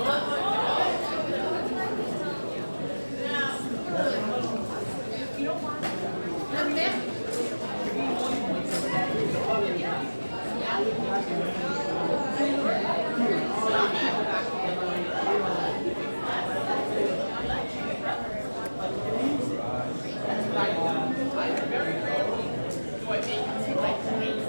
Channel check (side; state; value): both; inverted; correlation -1.00